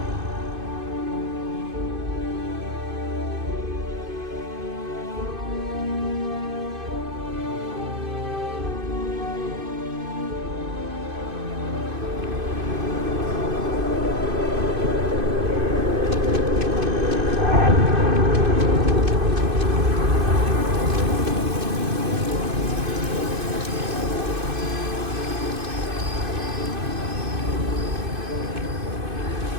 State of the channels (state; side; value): late; left; 2.5 ms